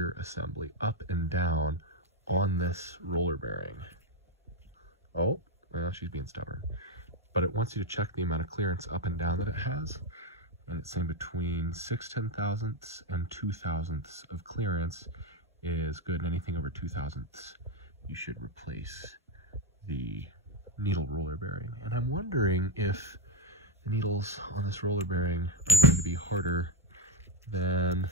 assembly up and down on this roller bearing. Oh, well, she's being stubborn. But it wants you to check the amount of clearance up and down that it has. And it's saying between 6 10,000ths and 2 thousandths of clearance is good. And anything over 2 thousandths, you should replace the needle roller bearing. And I'm wondering if needles on this roller bearing are going to be harder than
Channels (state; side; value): normal; both; correlation 0.08